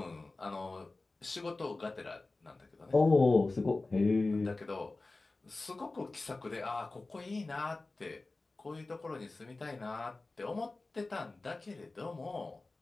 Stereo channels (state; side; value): quieter; right; 3.3 dB